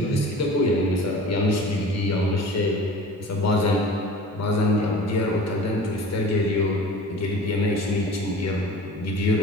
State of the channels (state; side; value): normal; both; correlation 0.41